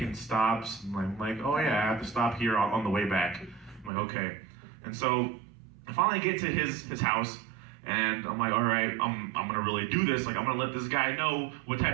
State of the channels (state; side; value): drops out; left; at 3.9 s